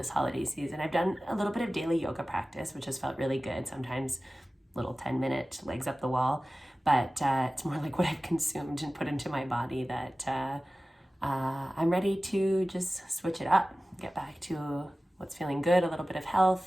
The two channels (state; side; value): normal; both; correlation 0.97